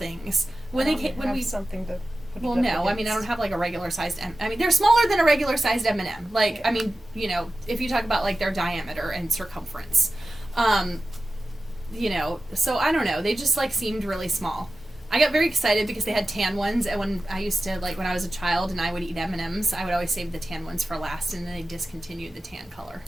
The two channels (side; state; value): both; normal; correlation 0.94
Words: When we something to put well, it up no, I against. mean, I don't have like a regular sized I mean, they're smaller than a regular sized M&M. Like, I mean, if you talk about like their diameter and circumference. So I don't know. They just like seemed really small. I got very excited because they had tan ones, and when I used to, like, when I was a child and I would eat M&Ms, I would always save the tan ones for last, and then they discontinued the tan color.